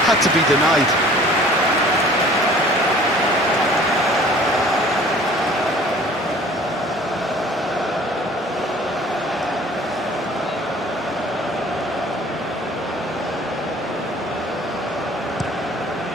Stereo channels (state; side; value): normal; both; correlation 0.50